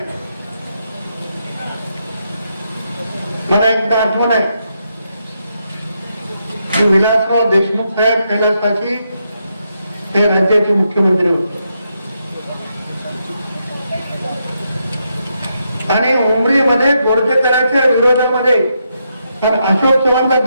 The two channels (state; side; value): inverted; both; correlation -0.81